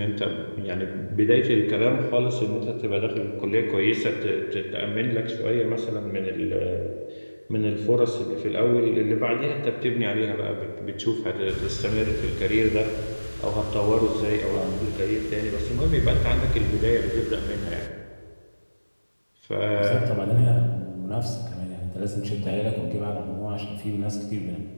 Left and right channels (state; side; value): inverted; both; correlation -1.00